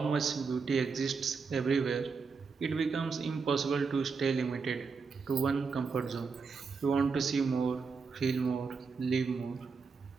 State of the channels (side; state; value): left; quieter; 5.0 dB